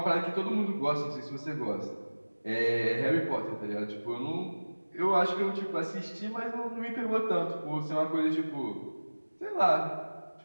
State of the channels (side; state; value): both; inverted; correlation -1.00